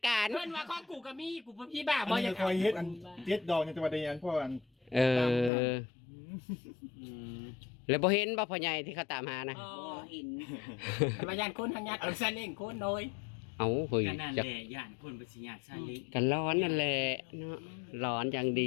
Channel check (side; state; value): right; drops out; at 5.5 s